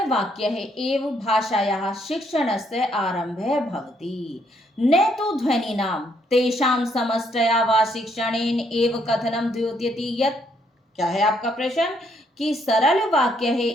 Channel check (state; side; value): normal; both; correlation 0.71